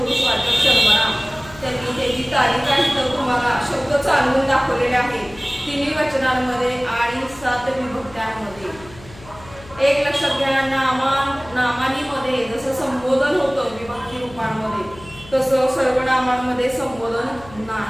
सर्वनाम त्यांनी त्याची तारीख आहे तर तुम्हाला शब्द चालवून दाखवलेले आहेत तिन्ही वचनांमध्ये आणि 7 विभक्त्यांमध्ये. एक लक्षात घ्या, नामानीमध्ये जसं संबोधन होतं विभक्ती रूपांमध्ये तसं सर्वनामांमध्ये संबोधन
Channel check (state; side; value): noise; left; hum, 20 dB below the sound